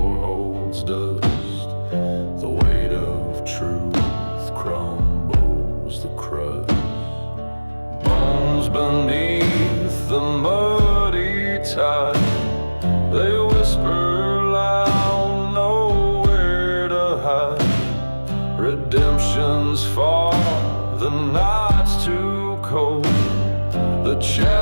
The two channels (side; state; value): both; inverted; correlation -1.00